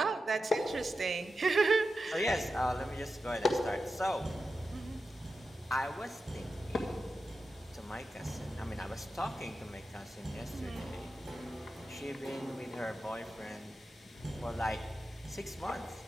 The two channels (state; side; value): normal; both; correlation 0.91